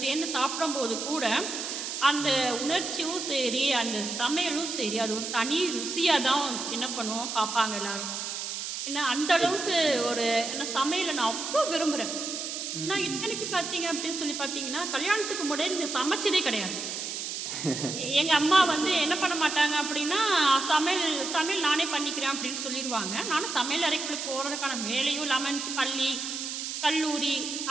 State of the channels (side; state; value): right; noise; hiss, 5 dB below the sound